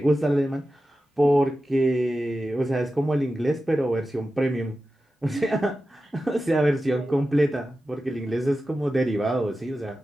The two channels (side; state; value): both; normal; correlation 0.93